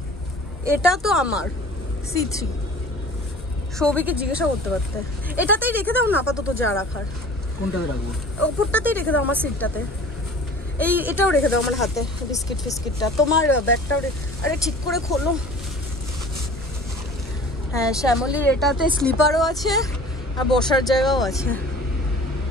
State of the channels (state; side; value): normal; both; correlation 0.44